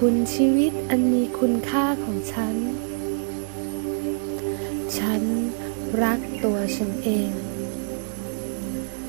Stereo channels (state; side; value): silent; left; digital silence